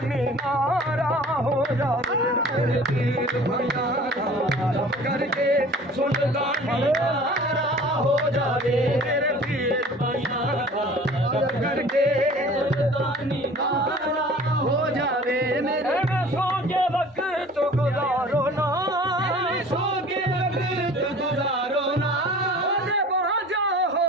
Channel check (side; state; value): both; normal; correlation 0.46